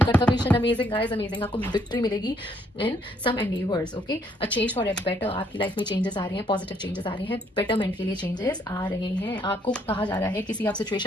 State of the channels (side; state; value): both; normal; correlation 0.69